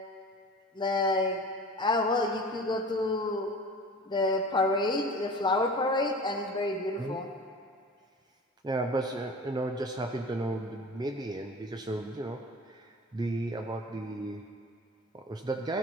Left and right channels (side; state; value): both; normal; correlation 0.38